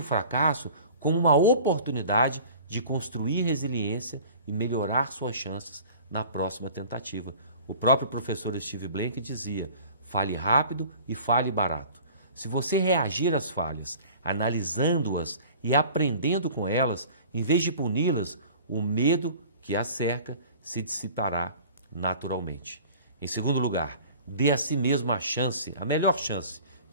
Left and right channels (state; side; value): inverted; both; correlation -0.45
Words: fracasso como uma oportunidade de construir resiliência e melhorar suas chances na próxima tentativa. O próprio professor Steve Blank dizia: fale rápido e fale barato. Se você reagir às falhas, analisando-as e aprendendo com elas, em vez de puni-las, o medo que as cerca se dissipará naturalmente. Em segundo lugar, dê a si mesmo a chance, a melhor chance